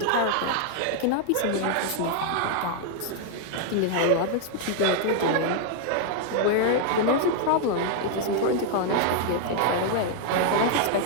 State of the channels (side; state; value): both; different; correlation 0.00